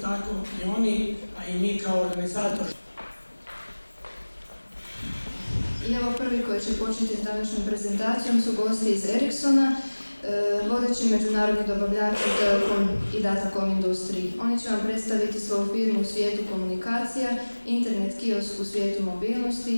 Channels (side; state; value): both; inverted; correlation -1.00